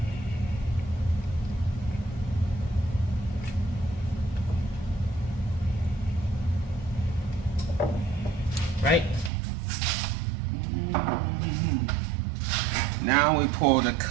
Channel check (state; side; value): drops out; left; at 9.3 s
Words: Right? Now we pour the